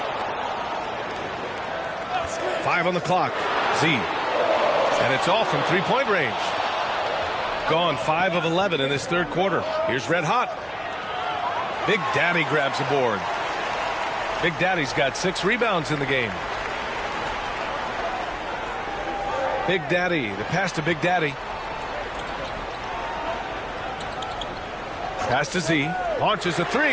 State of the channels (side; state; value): both; identical; correlation 1.00